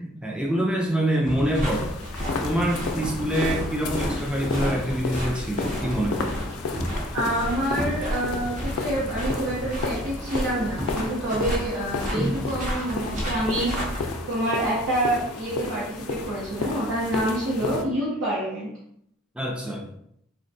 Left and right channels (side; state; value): both; normal; correlation 0.54